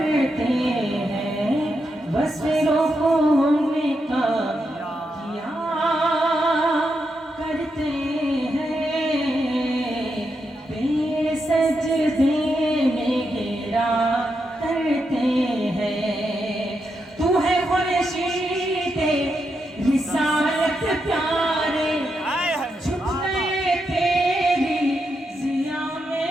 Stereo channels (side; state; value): both; normal; correlation 0.84